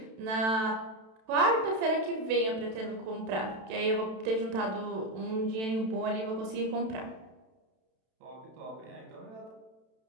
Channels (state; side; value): late; left; 32 ms